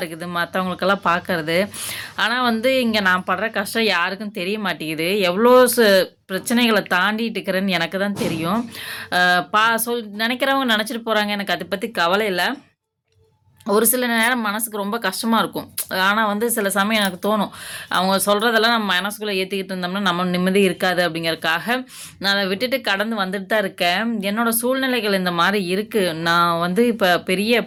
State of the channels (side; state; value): both; identical; correlation 1.00